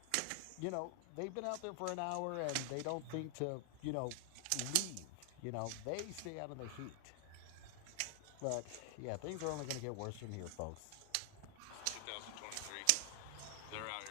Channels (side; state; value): both; different; correlation 0.00